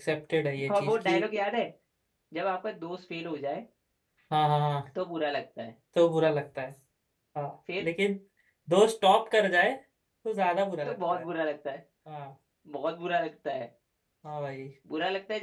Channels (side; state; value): both; identical; correlation 1.00